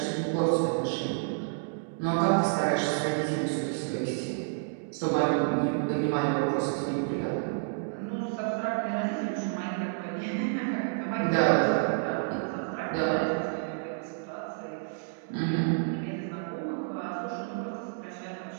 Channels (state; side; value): silent; left; digital silence